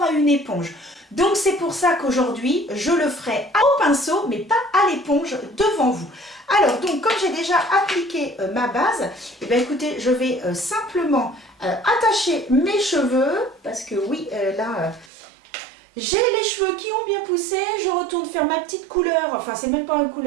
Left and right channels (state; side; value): drops out; left; at 15.1 s